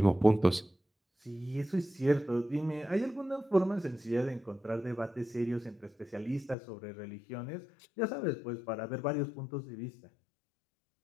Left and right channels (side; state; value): right; drops out; at 6.6 s